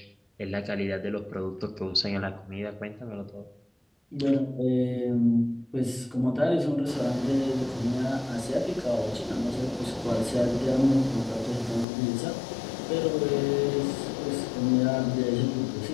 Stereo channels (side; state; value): right; drops out; at 11.9 s